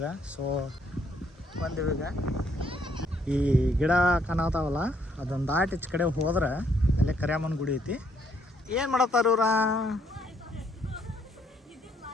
ಸೊ ಬಂದಿವಿ. ಈಗ ಈ ಗಿಡ ಕಾಣತಾವಲ್ಲ ಅದೊಂದು ದಾಟಿ ಈಚೆ ಕಡೆ ಹೋದ್ರೆ ಅಲ್ಲೇ ಕರ್ಯಾಮನ ಗುಡಿ ಐತಿ. ಏನು ಮಾಡತ್ತಾರ ಇವ್ರ?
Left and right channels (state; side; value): normal; both; correlation 0.69